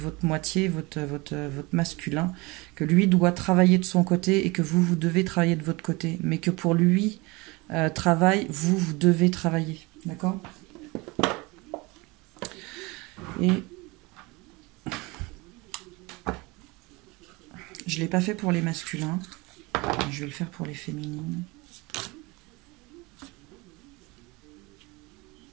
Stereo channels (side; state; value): left; quieter; 24.8 dB